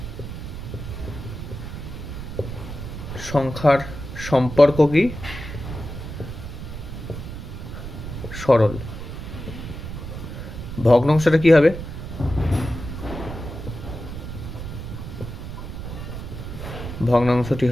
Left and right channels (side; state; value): right; noise; rumble, 8 dB below the sound